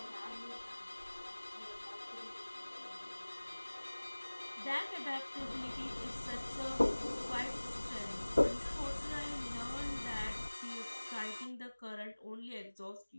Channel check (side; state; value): both; inverted; correlation -1.00